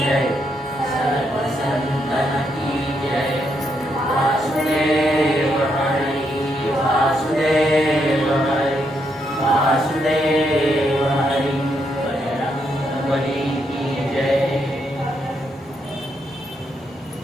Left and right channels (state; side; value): normal; both; correlation 0.78